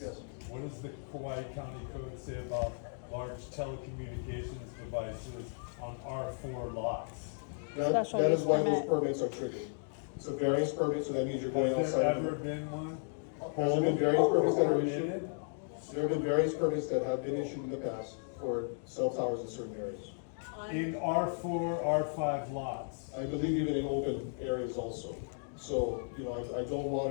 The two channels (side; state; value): right; silent; digital silence